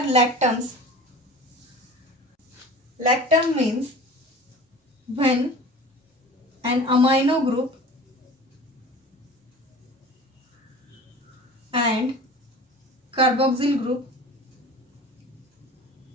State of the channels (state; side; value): normal; both; correlation 0.40